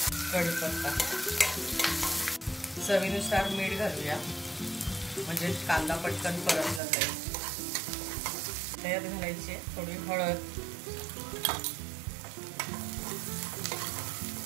कढीपत्ता, चवीनुसार मीठ घालूया म्हणजे कांदा पटकन परतला जाईल। त्यात घालायची थोडी हळद।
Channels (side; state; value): left; drops out; at 6.8 s